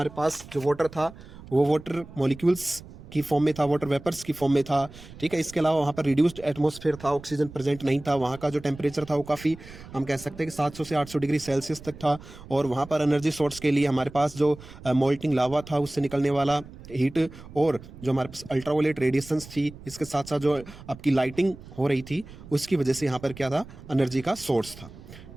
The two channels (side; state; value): right; noise; rumble, 17 dB below the sound